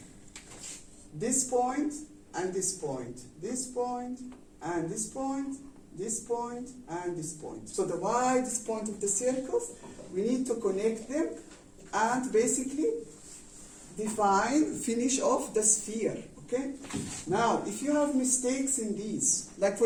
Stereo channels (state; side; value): identical; both; correlation 1.00